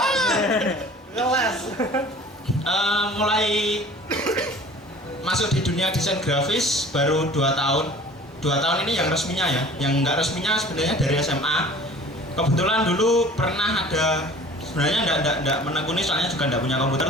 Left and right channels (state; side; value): normal; both; correlation 0.46